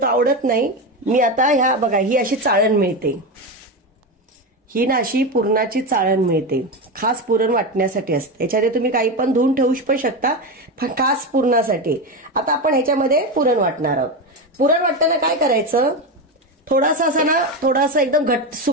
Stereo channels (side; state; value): both; normal; correlation 0.16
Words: आवडत नाही. मी आता ह्या बघा ही अशी चाळण मिळते, ही ना अशी पुरणाची चाळण मिळते, खास पुरण वाटण्यासाठी असते. याच्यामध्ये तुम्ही काही पण धुवून ठेवू पण शकता, खास पुरणासाठी. आता आपण ह्याच्यामध्ये पुरण वाटणार आहोत. पुरण वाटताना काय करायचं, थोडासा असा ना, थोडासा एकदम घट्ट